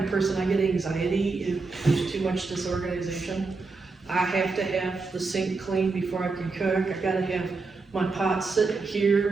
of person, I get anxiety if there's too much disorganization. I have to have the sink clean before I can cook. I gotta have my pots sitting here,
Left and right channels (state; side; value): quieter; left; 4.0 dB